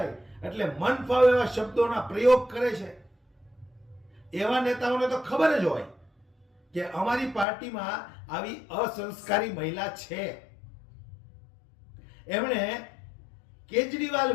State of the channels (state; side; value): drops out; right; at 7.5 s